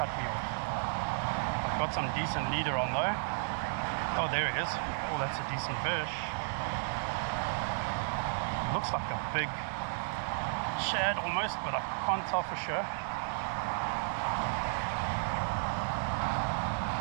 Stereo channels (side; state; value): left; silent; digital silence